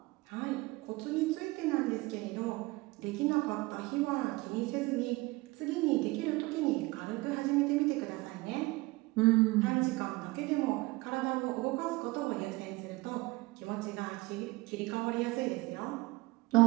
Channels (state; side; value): quieter; left; 22.0 dB